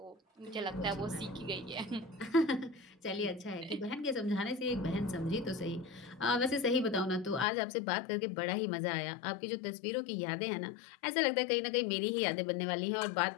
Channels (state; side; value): drops out; right; at 7.5 s